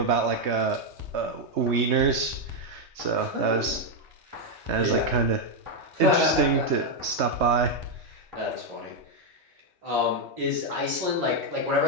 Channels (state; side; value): late; left; 3.2 ms